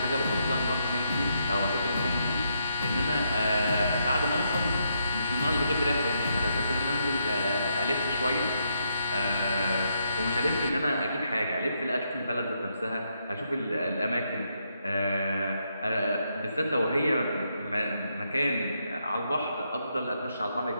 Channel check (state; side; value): inverted; both; correlation -0.79